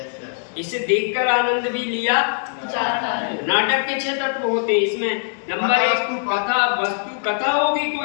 इसे देखकर आनंद भी लिया जाता है। नाटक के 6 तत्व होते हैं इसमें। नंबर 1 कथा वस्तु, कथा होगी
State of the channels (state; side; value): silent; right; digital silence